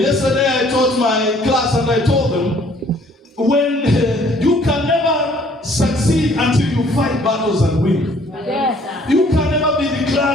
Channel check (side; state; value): both; normal; correlation 0.59